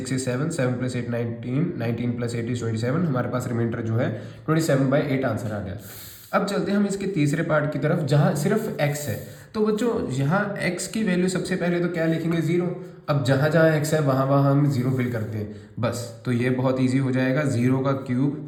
is 7, 7 plus 8 19, 19 plus 8 is 27। हमारे पास रिमाइंडर जो है 27/8 आंसर आ गया। अब चलते हैं हम इसके तीसरे पार्ट की तरफ जहाँ सिर्फ x है। तो बच्चों यहाँ x की वैल्यू सबसे पहले तो क्या लिखेंगे 0। अब जहाँ जहाँ x है वहाँ वहाँ हम 0 फिल करते हैं बस। तो ये बहुत ईजी हो जाएगा, 0 का क्यूब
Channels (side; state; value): both; identical; correlation 1.00